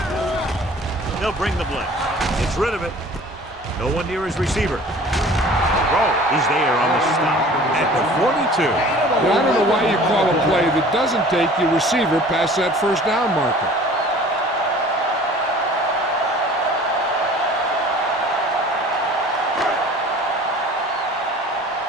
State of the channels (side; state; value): both; normal; correlation 0.47